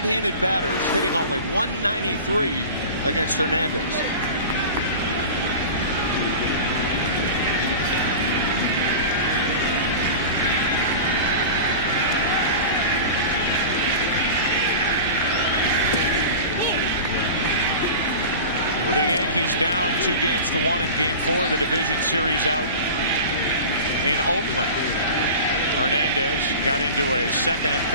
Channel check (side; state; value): both; inverted; correlation -0.33